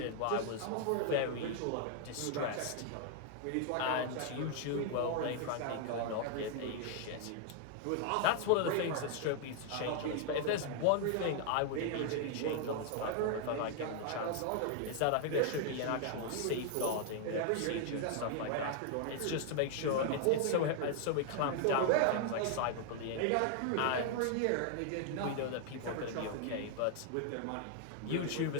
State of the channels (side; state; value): both; different; correlation 0.00